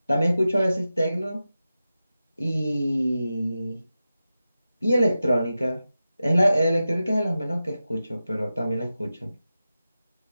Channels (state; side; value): inverted; both; correlation -0.93